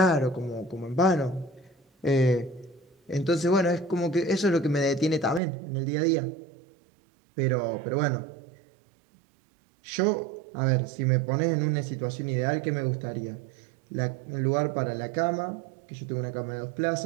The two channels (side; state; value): left; drops out; at 5.4 s